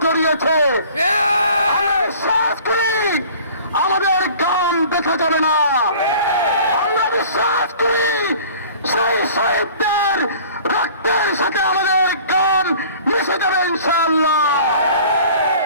জড়িয়েছে। বিশ্বাস করি আমাদের গান দেখা যাবে না। আমরা বিশ্বাস করি সেই শহীদদের রক্তের সাথে আমাদের গান মিশে যাবে ইনশাআল্লাহ।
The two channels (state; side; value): inverted; both; correlation -0.47